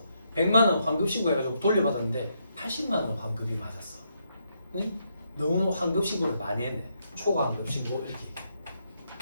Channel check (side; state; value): both; inverted; correlation -0.78